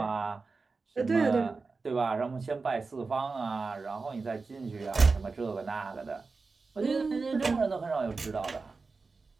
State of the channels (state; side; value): quieter; left; 4.2 dB